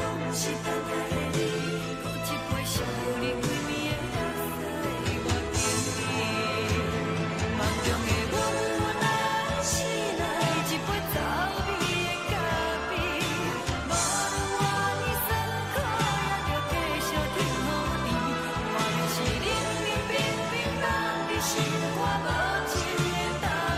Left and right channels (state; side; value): identical; both; correlation 1.00